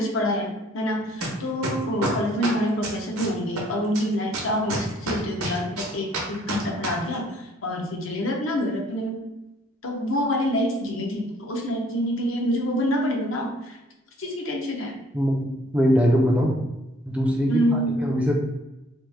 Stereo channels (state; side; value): normal; both; correlation 0.60